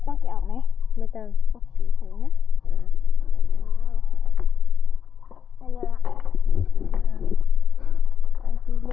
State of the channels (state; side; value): quieter; right; 7.6 dB